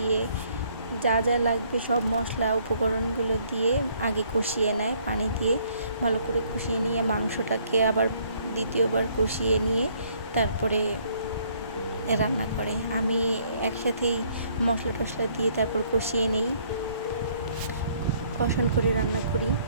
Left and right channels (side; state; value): both; inverted; correlation -0.64